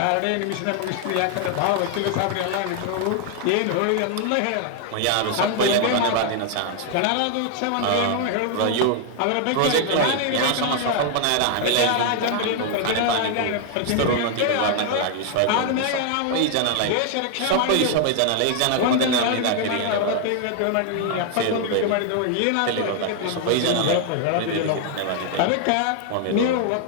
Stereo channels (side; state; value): both; different; correlation 0.00